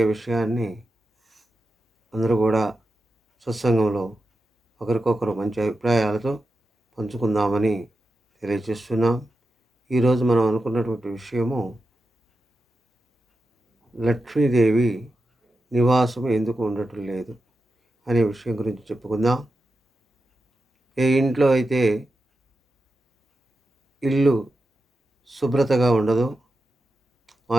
విషయాన్ని అందరూ కూడా సత్సంగంలో ఒకరికొకరు మంచి అభిప్రాయాలతో పంచుకుందామని తెలియజేస్తున్నాం. ఈరోజు మనం అనుకున్నటువంటి విషయము లక్ష్మీదేవి నివాసం ఎందుకు ఉండటం లేదు అనే విషయం గురించి చెప్పుకుందాం. ఏ ఇంట్లో అయితే ఇల్లు శుభ్రతగా ఉండదో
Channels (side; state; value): both; normal; correlation 0.90